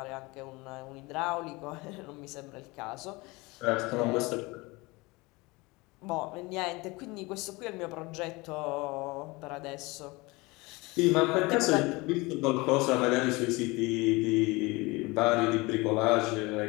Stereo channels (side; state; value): right; quieter; 23.9 dB